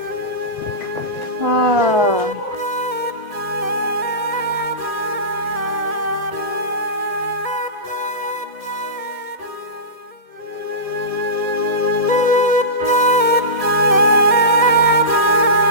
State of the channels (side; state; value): left; late; 1.7 ms